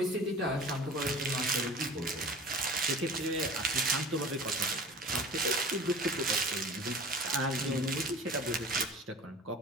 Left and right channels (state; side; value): normal; both; correlation 0.41